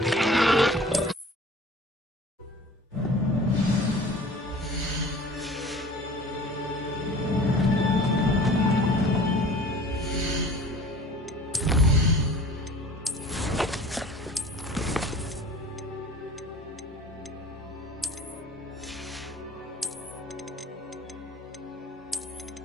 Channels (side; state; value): both; normal; correlation 0.44